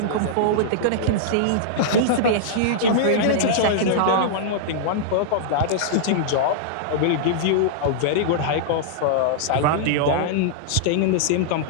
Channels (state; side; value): different; both; correlation -0.02